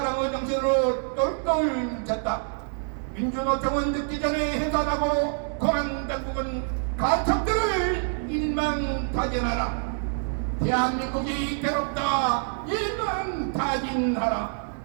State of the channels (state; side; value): silent; left; 61 dB below the other